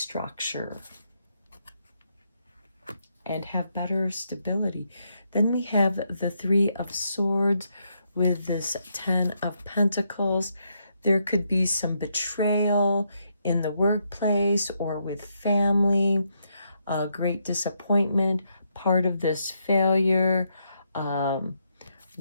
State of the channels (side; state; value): both; inverted; correlation -0.78